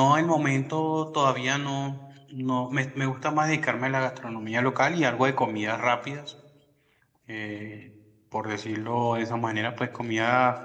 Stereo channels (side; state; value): both; identical; correlation 1.00